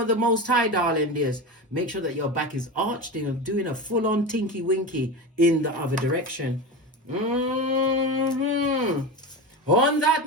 the Most High, darling dears. Make sure that your back is arched and doing a full-on tinky winky in the other direction. On that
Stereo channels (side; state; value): both; normal; correlation 0.23